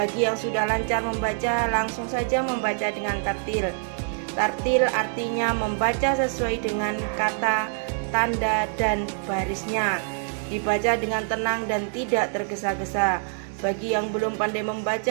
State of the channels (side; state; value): left; silent; 62 dB below the other